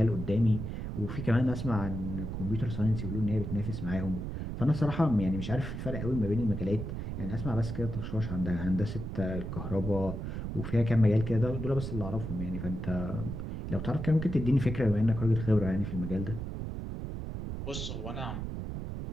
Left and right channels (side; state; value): right; noise; rumble, 5 dB below the sound